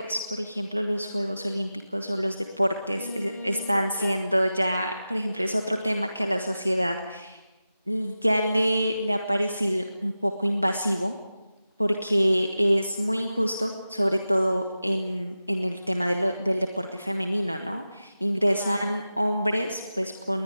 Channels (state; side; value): inverted; both; correlation -0.93